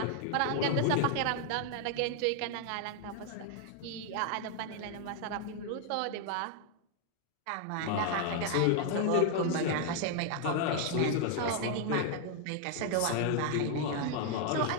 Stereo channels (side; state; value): both; different; correlation 0.00